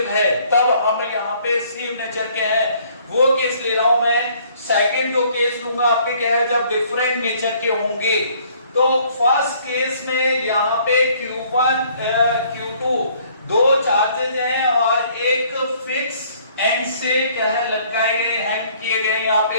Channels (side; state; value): both; inverted; correlation -0.60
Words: है तब हम यहाँ पे सेम नेचर के हैं, वो केस ले रहा हूं मैं। सेकंड जो केस लूंगा आपके क्या है जब डिफरेंट नेचर के होंगे। तो फर्स्ट केस में यहाँ पे Q1 Q2 दो चार्जेस हैं और एक फिक्स एंड से क्या है लटकाए गए हैंग किए गए यहाँ